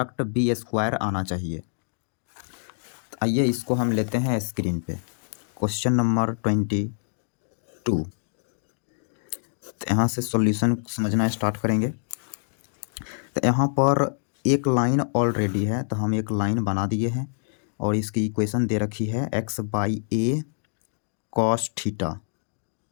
बी स्क्वायर आना चाहिए। आइए इसको हम लेते हैं स्क्रीन पे। Question number 22। तो यहाँ से सॉल्यूशन समझना स्टार्ट करेंगे। तो यहाँ पर एक लाइन ऑलरेडी है, तो हम एक लाइन बना दिए हैं और इसकी इक्वेशन दे रखी है x by a cos theta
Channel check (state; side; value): silent; right; digital silence